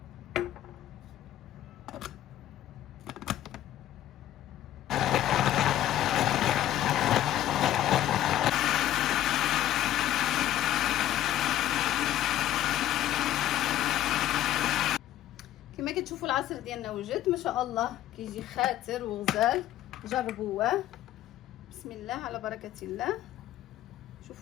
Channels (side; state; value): right; quieter; 13.0 dB